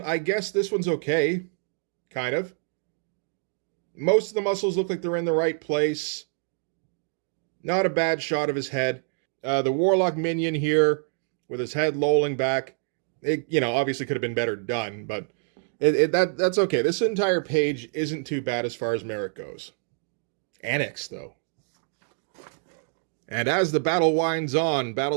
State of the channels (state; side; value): silent; left; 61 dB below the other